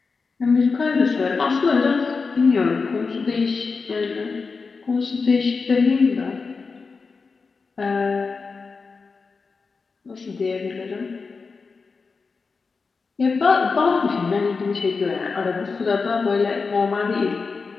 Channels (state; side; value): quieter; right; 4.6 dB